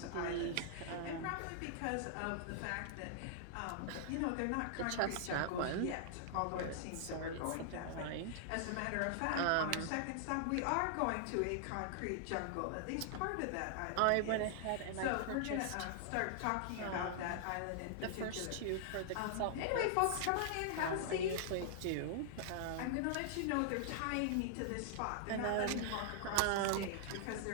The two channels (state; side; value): different; both; correlation -0.01